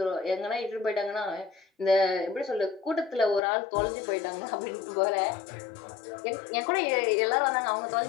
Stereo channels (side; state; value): right; drops out; at 3.4 s